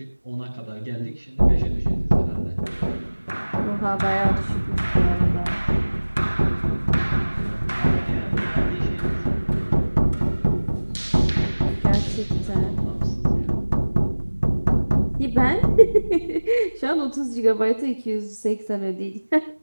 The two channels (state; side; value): inverted; both; correlation -1.00